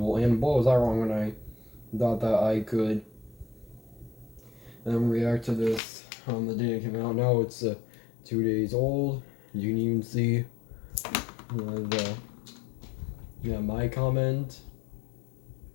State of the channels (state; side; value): drops out; right; at 5.8 s